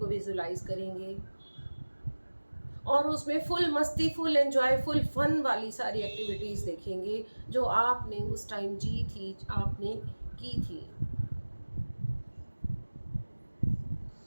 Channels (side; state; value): both; inverted; correlation -1.00